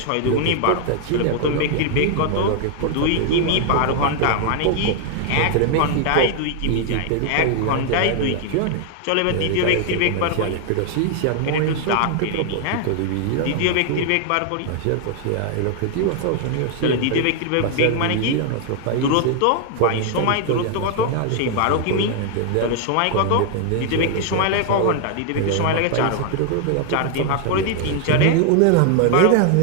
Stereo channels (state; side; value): different; both; correlation 0.00